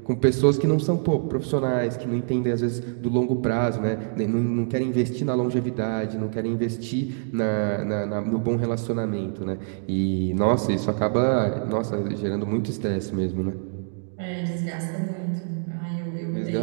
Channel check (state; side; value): silent; left; digital silence